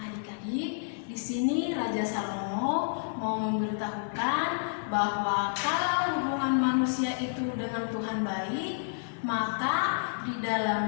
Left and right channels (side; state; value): right; silent; 58 dB below the other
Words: adik-adik, di sini Raja Salomo mau memberitahukan bahwa kalau hubungan manusia itu dengan Tuhan baik, maka di